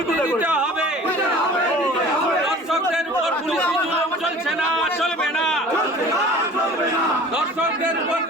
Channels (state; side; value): normal; both; correlation 0.44